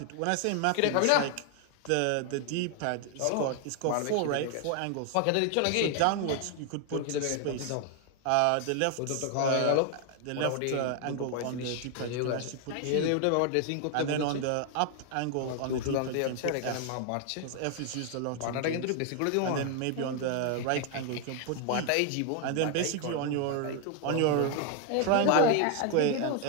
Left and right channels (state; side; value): different; both; correlation 0.00